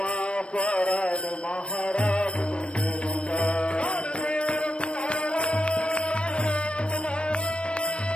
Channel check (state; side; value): late; right; 0.058 ms